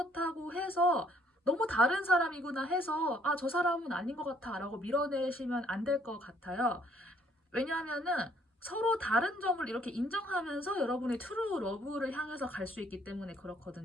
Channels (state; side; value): normal; both; correlation 0.65